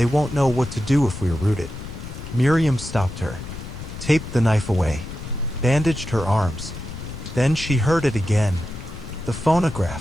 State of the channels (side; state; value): left; noise; rumble, 10 dB below the sound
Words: won't know what to do if we're rooted." Miriam stopped her, taped the knife away, bandaged her arms. Then she heard it again. The